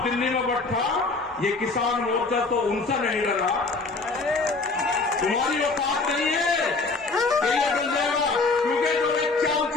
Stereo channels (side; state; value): right; quieter; 3.8 dB